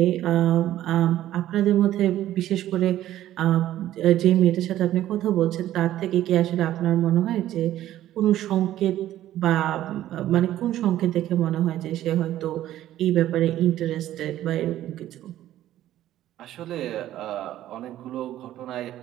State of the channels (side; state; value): left; quieter; 13.2 dB